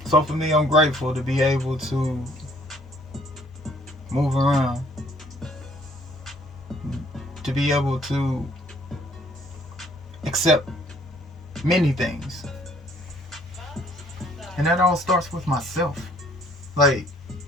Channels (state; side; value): normal; both; correlation 0.61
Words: So for me, I'm grateful to be able to move around, to be able to accept many things. And that all starts with myself. Like,